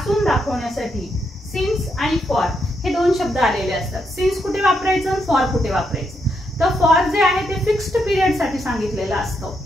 दाखवण्यासाठी. सिन्स आणि फॉर हे दोन शब्द आलेले असतात. सिन्स कुठे वापरायचं, फॉर कुठे वापरायचं. तर फॉर जे आहे ते फिक्स्ड पिरियड साठी सांगितलेलं असतं.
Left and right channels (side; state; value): both; normal; correlation 0.80